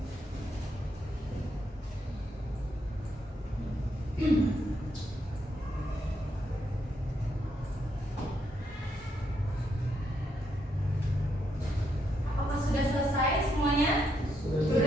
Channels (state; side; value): normal; both; correlation 0.78